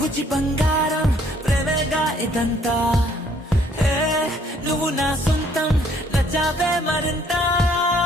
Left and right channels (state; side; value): normal; both; correlation 0.63